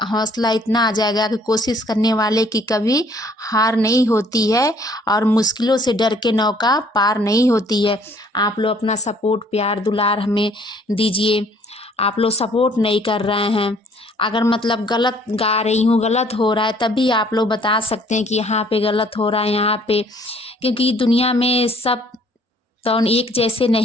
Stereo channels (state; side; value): normal; both; correlation 0.60